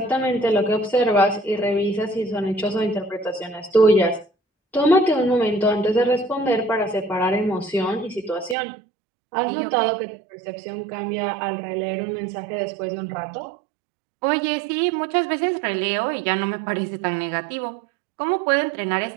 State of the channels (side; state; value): left; drops out; at 8.6 s